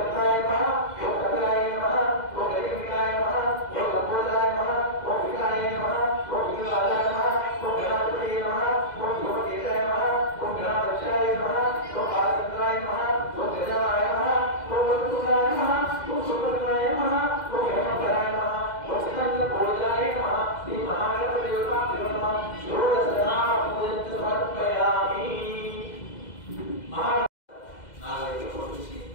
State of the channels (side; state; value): right; late; 2.0 ms